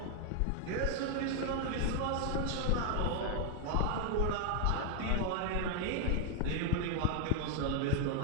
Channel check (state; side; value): different; both; correlation 0.01